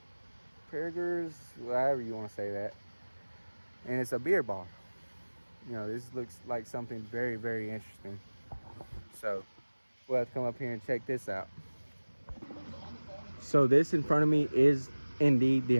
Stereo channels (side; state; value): both; inverted; correlation -1.00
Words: burgers, however you want to say that. And it's a beer bar. This looks like something very, very interesting. So we'll have to come up here and check this out. So this in front of me is indeed the